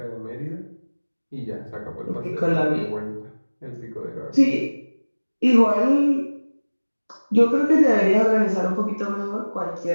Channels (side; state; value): both; inverted; correlation -1.00